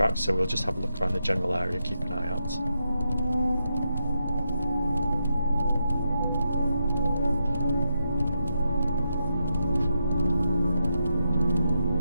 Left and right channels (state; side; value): inverted; both; correlation -0.84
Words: so we'll just have a look around the general area, keep an eye out.